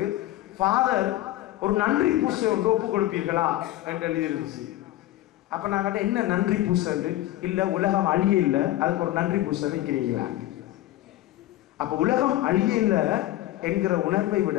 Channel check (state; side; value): quieter; right; 15.2 dB